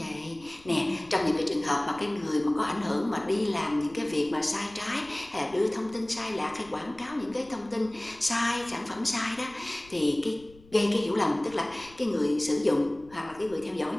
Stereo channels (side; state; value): left; noise; rumble, 24 dB below the sound